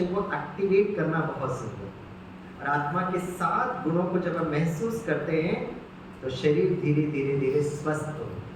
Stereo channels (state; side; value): identical; both; correlation 1.00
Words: को एक्टिवेट करना बहुत सुंदर है। और आत्मा के 7 गुणों को जब हम महसूस करते हैं तो शरीर धीरे धीरे धीरे स्वस्थ होता